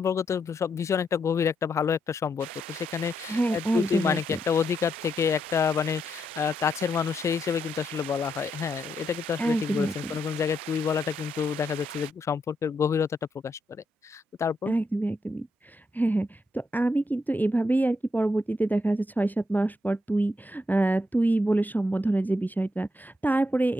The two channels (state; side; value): normal; both; correlation 0.80